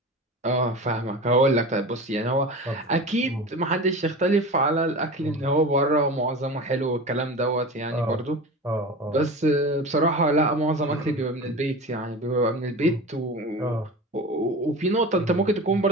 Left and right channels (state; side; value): normal; both; correlation 0.31